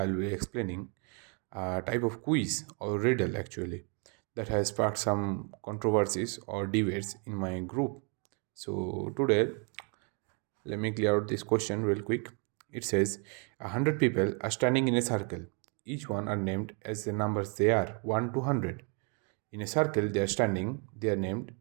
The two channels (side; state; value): left; quieter; 37.9 dB